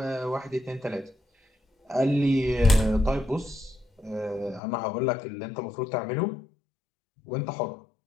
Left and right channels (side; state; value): right; drops out; at 4.6 s